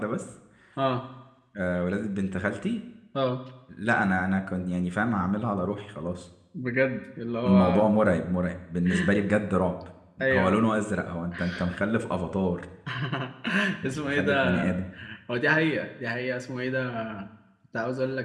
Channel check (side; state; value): both; identical; correlation 1.00